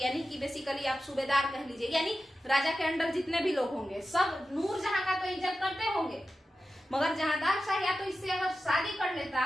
कि बेसिकली आप सूबेदार कह लीजिए, यानी राजा के अंडर जितने भी लोग होंगे सब नूर जहां का तो इज्जत करते होंगे। मगर जहांदार शाह या तो इससे अगर शादी कर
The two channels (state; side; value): normal; both; correlation 0.93